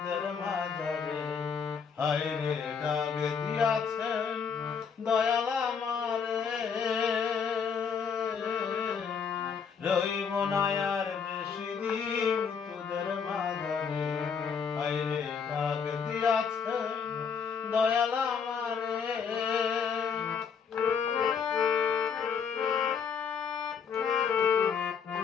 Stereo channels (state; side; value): quieter; right; 6.5 dB